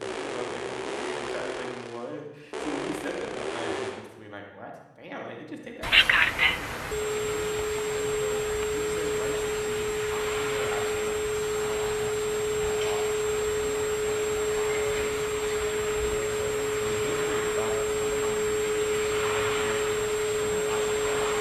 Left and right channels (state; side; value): identical; both; correlation 1.00